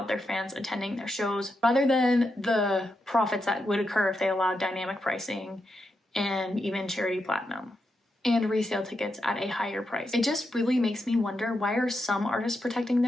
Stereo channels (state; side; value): normal; both; correlation 0.85